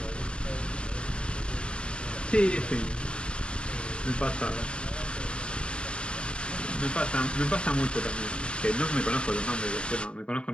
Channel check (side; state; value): right; late; 0.054 ms